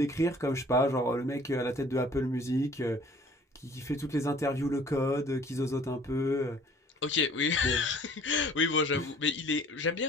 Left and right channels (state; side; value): normal; both; correlation 0.52